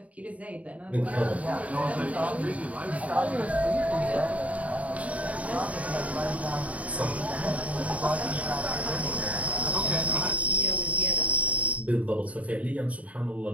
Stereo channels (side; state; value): left; late; 0.068 ms